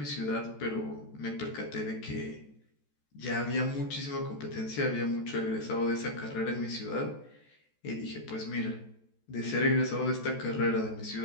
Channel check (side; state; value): right; late; 14 ms